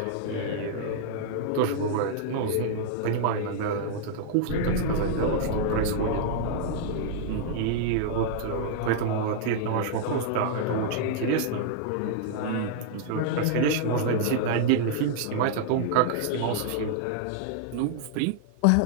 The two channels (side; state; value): both; different; correlation -0.01